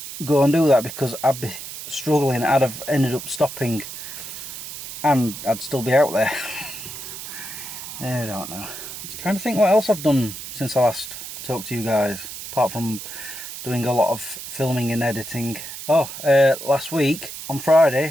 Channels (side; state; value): right; noise; hiss, 10 dB below the sound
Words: go and do that, because I'd be struggling. I'd have ended up stopping and I'd still be out there. I don't know. I'm trying to think what else I've done since I last talked to you guys, apart from doing a lot of filming and editing. Last week on